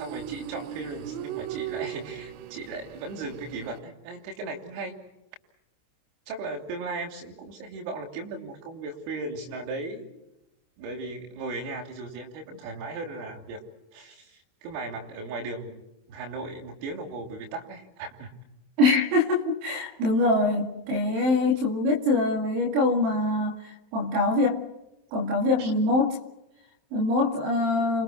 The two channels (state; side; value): late; left; 27 ms